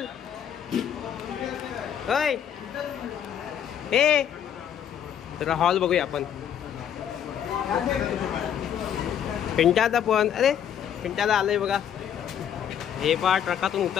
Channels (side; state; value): right; quieter; 9.2 dB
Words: होय ए। तर हॉल बघूया आपण। पिंट्याचा पण, अरे पिंट्याला आलंय बघा। हे पहा ट्रकातून